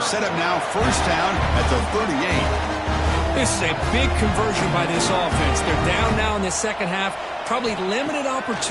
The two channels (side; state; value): both; identical; correlation 1.00